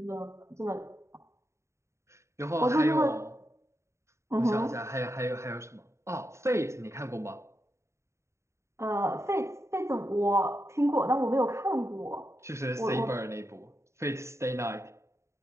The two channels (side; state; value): left; late; 0.14 ms